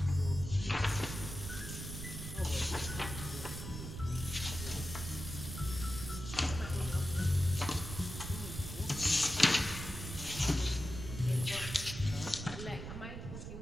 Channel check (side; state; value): right; noise; rumble, 8 dB below the sound